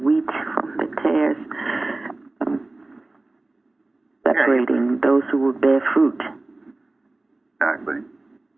from the tares, separating those who will bear fruit. Exactly.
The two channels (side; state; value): left; quieter; 3.0 dB